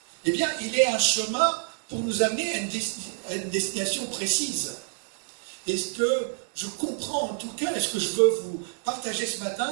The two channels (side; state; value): left; silent; 60 dB below the other